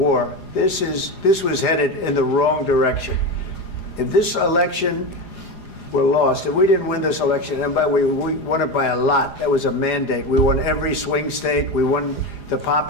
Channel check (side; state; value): right; late; 4.9 ms